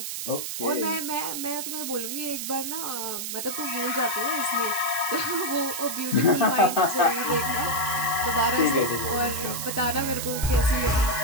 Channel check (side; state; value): right; noise; hiss, 4 dB below the sound